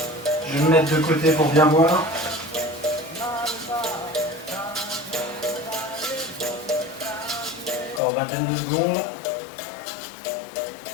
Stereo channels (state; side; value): drops out; right; at 8.0 s